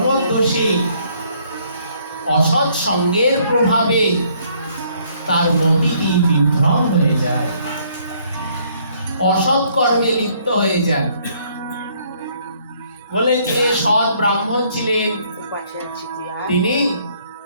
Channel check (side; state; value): both; inverted; correlation -0.65